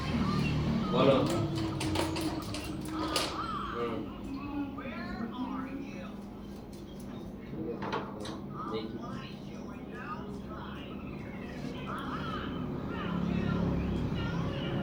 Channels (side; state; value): both; identical; correlation 1.00